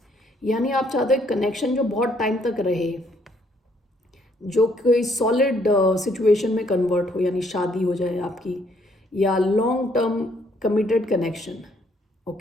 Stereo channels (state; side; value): normal; both; correlation 0.68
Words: यानी आप चाहते हो कनेक्शन जो बहुत टाइम तक रहे, जो कोई सॉलिड सिचुएशन में कन्वर्ट हो, यानी शादी हो जाए आपकी, या long term committed connection.